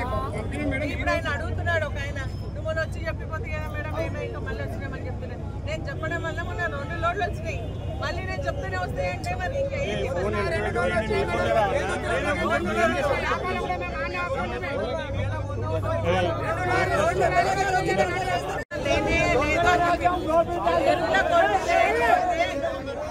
ఇప్పుడు ఆయన అడుగుతున్నాడు ఒక ఆయన, నువ్వు మొన్న వచ్చి చెప్పిపోతే కదా మేడం ఏమో ఇంకా మళ్ళీ వచ్చినామని చెప్తున్నాను. నేను చెప్పడం వల్ల మొన్న 2 లోడ్లు వచ్చినాయి. మళ్ళీ నేను చెప్తూనే వస్తాయంటే మరి ఇంకా ఏంటి?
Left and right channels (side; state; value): both; identical; correlation 1.00